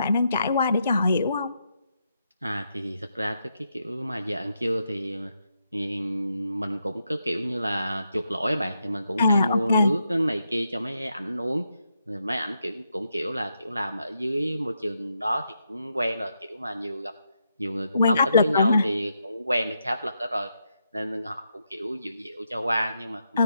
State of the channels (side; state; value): both; inverted; correlation -0.81